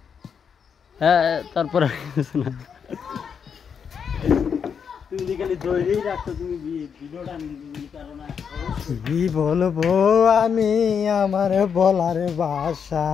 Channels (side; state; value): right; quieter; 6.9 dB